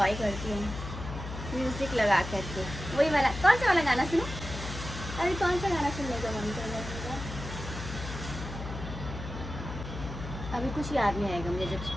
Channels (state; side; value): noise; left; hum, 9 dB below the sound